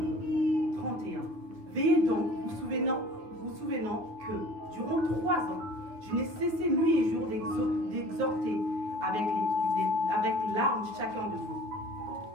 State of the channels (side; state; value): left; late; 9.3 ms